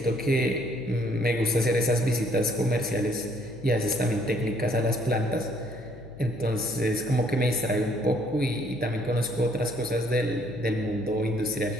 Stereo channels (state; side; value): noise; left; hum, 19 dB below the sound